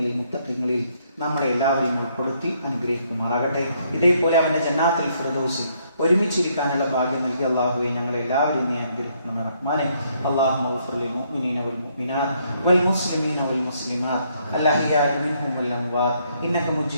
മുത്തഖീങ്ങളിൽ നമ്മളെ എല്ലാവരെയും ഉൾപ്പെടുത്തി അനുഗ്രഹിക്കുമാറാകട്ടെ. ഇതേപോലെ അവന്റെ ജന്നാത്തുൽ ഫിർദൗസിൽ ഒരുമിച്ചിരിക്കാനുള്ള ഭാഗ്യം നൽകി അള്ളാഹുവെ ഞങ്ങളെ എല്ലാവരെയും നീ അനുഗ്രഹിക്കണം റഹ്മാനെ. അല്ലാഹുമ്മ ഗ്ഫിർ ലിൽ മുഅ്മിനീന വൽ മുഅ്മിനാത്ത് വൽ മുസ്ലിമീന വൽ മുസ്ലിമാത്ത് അൽഅഹ്യാഇ മിൻഹും വൽ അംവാത്ത് ഇന്നക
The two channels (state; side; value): inverted; both; correlation -0.71